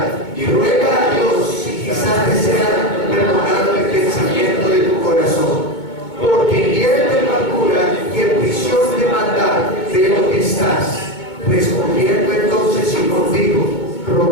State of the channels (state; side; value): late; right; 2.2 ms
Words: y ruega a Dios si quizás te sea perdonado el pensamiento de tu corazón. Porque en hiel de amargura y en prisión de maldad veo que estás. Respondiendo entonces Simón dijo,